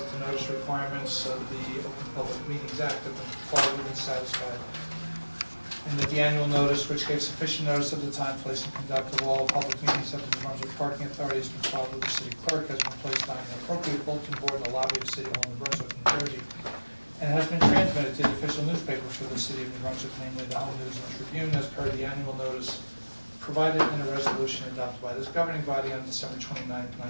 notice requirements of the Open Public Meetings Act have been complied with and satisfied. And that the annual notice, which gave sufficient notice of the time, place, and conduct of all public meetings of the New Brunswick Parking Authority has been filed with the city clerk, has been placed on an appropriate bulletin board in the lobby of City Hall in New Brunswick, New Jersey, and has been transmitted to the official newspaper for the city of New Brunswick, namely the Home News and Tribune, as per the annual notice provided in a resolution adopted by this governing body on December 29,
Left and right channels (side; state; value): both; inverted; correlation -1.00